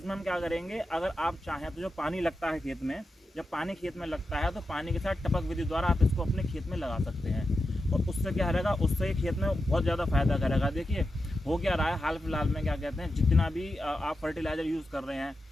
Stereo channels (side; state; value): both; normal; correlation 0.90